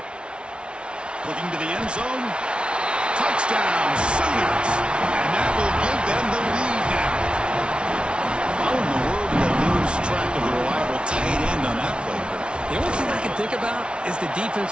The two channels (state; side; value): late; left; 0.057 ms